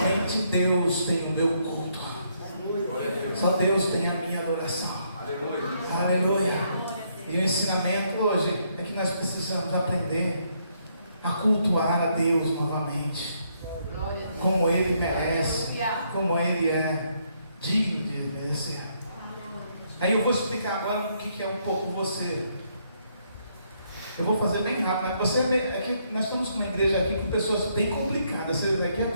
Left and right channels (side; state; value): both; inverted; correlation -0.73